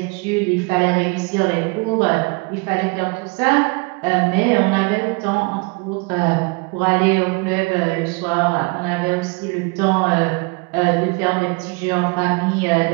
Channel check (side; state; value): left; quieter; 29.8 dB